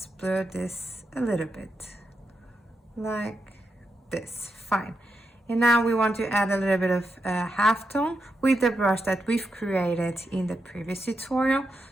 blur this a little bit like this. Fine. And now we want to add a little bit of halftone with the brush that we've created in the previous tutorial.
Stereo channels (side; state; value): both; normal; correlation 0.85